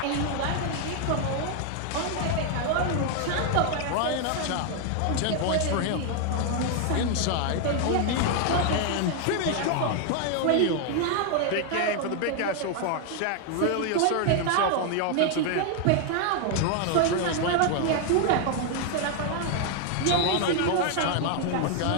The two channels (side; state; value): both; different; correlation 0.00